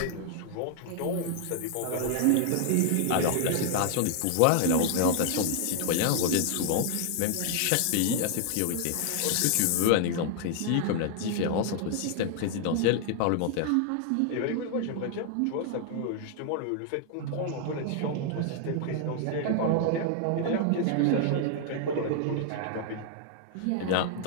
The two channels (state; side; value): different; both; correlation 0.00